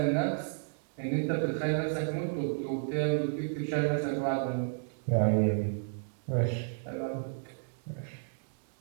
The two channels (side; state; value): left; silent; digital silence